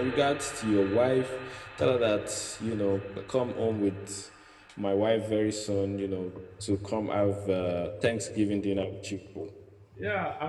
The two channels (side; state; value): both; identical; correlation 1.00